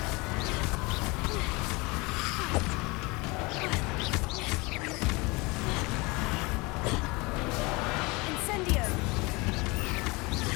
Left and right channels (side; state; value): right; quieter; 25.6 dB